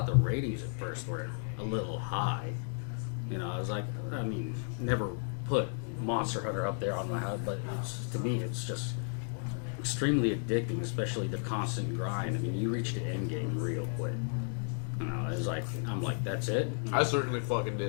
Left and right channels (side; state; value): right; silent; 55 dB below the other